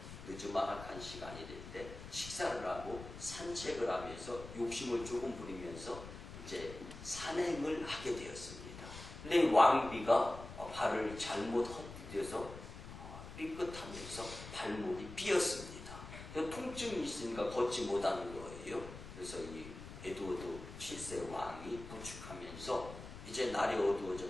늦지막한 시간이 될 때 식사를 하고 산책을 하면서 욕심을 조금 부리면서 이제 산행을 하게 되었습니다. 근데 이 왕비가 발을 잘못 헛디뎌서 삐끗하면서 발목이 삐었습니다. 통증이 있으니까 걷지 못하는 거예요. 그래서 이 에드워드 7세 왕이 부축하면서 이제 날이 어두워져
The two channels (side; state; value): left; noise; rumble, 12 dB below the sound